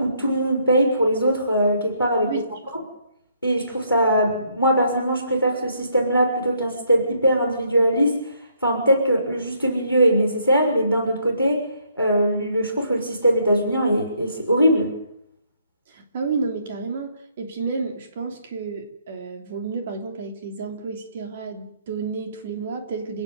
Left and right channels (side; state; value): both; inverted; correlation -0.70